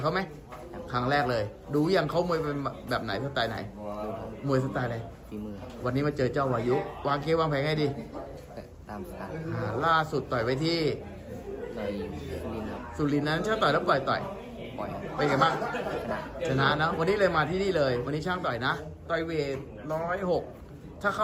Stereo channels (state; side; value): identical; both; correlation 1.00